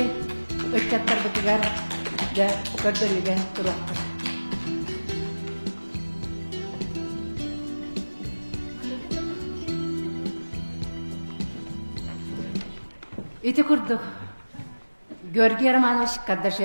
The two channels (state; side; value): inverted; both; correlation -1.00